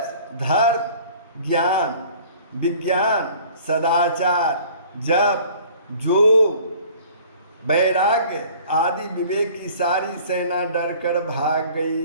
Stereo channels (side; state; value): both; inverted; correlation -0.49